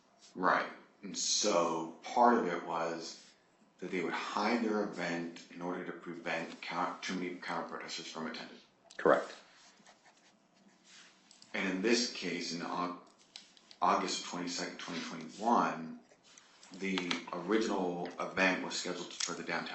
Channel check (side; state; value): both; identical; correlation 1.00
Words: Right. And so part of it was that they would hide their event in order to prevent too many counter protesters from attending. Correct. And in this case, in August 22nd, 2021, the original event was scheduled for the